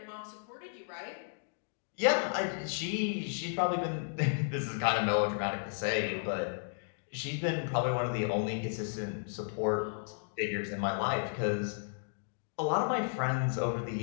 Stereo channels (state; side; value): silent; right; digital silence